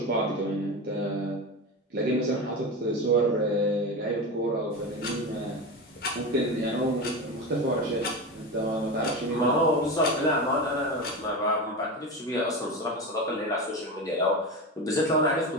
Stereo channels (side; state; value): both; normal; correlation 0.22